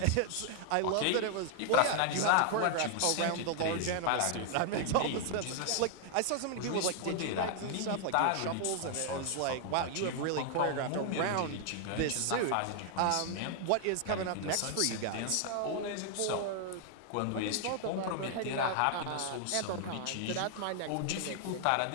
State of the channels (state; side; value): different; both; correlation 0.00